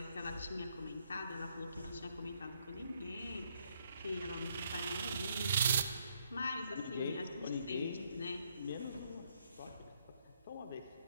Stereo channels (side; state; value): both; inverted; correlation -0.72